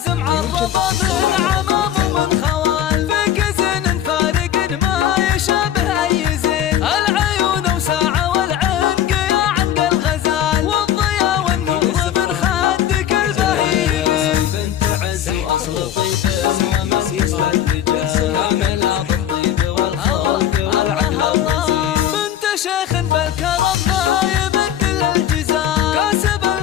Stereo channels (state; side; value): quieter; right; 10.5 dB